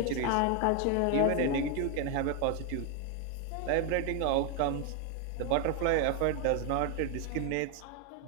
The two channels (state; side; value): different; both; correlation 0.01